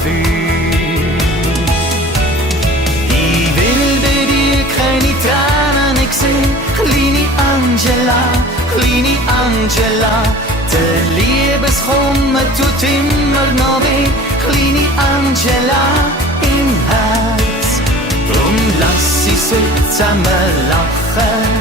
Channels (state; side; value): normal; both; correlation 0.43